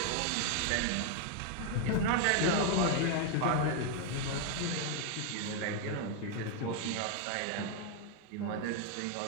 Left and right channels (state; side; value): different; both; correlation 0.00